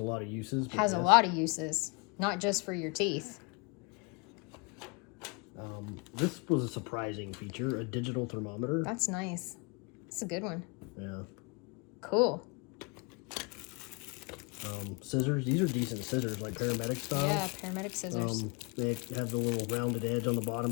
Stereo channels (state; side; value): quieter; right; 30.9 dB